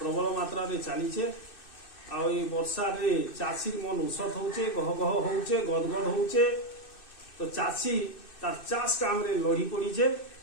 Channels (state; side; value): late; right; 2.6 ms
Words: मात्रा रे चलीचे आ वर्षा रे चाषी मन उसत होचे गह गह होचे गदगद होचे तो चाषी तार चाष काम रे लड़ी पड़ीचे